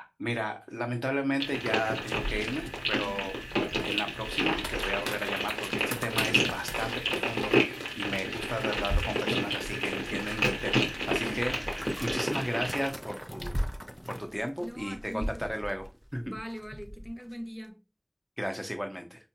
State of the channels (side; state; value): both; identical; correlation 1.00